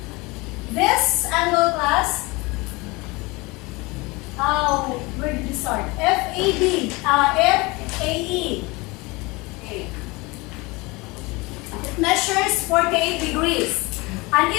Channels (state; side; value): quieter; right; 24.4 dB